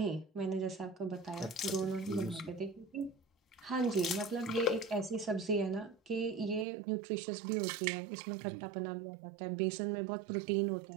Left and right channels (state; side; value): drops out; left; at 6.7 s